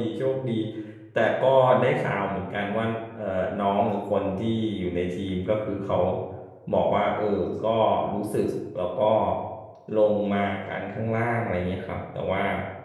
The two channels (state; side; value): identical; both; correlation 1.00